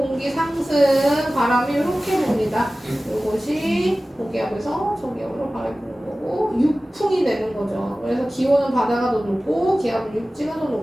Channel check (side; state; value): both; normal; correlation 0.97